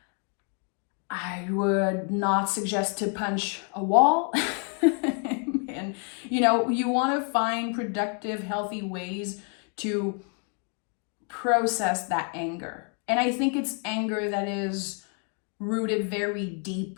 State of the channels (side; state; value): right; quieter; 39.9 dB